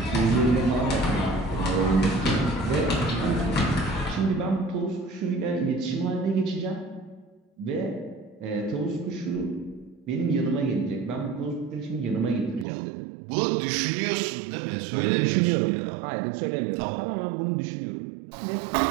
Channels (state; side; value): drops out; left; at 12.7 s